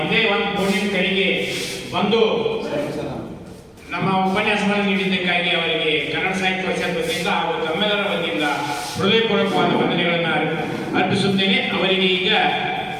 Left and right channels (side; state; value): both; identical; correlation 1.00